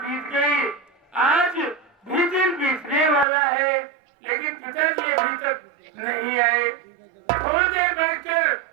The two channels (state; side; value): drops out; left; at 3.2 s